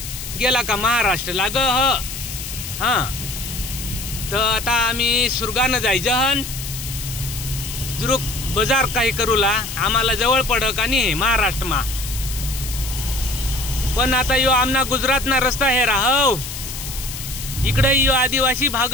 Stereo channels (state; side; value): noise; left; hiss, 9 dB below the sound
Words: गेला का महाराष्ट्र लाग हा। तर आता आम्ही सुरगानं जायचं हन जुरुक बाजार काही करूला, आम्हाला जवळ पडक आणि महाराष्ट्र मा। पण आता यो आमना गुजरात ना रस्ता हे राहव, इकडे यो आदिवासी भाग